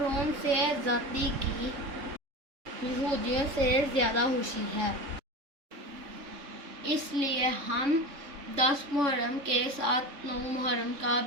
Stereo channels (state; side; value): late; left; 3.6 ms